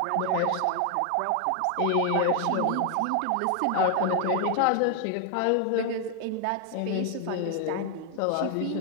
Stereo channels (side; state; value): both; different; correlation 0.00